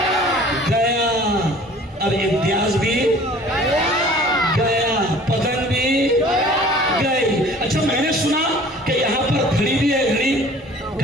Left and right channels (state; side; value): normal; both; correlation 0.49